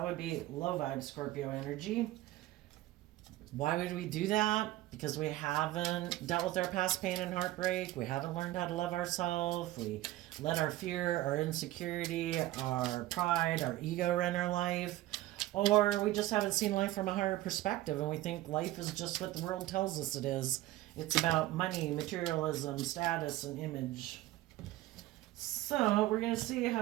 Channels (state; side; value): quieter; left; 16.0 dB